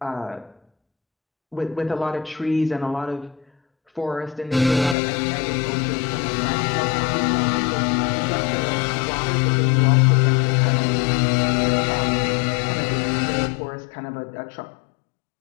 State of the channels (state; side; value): drops out; right; at 5.0 s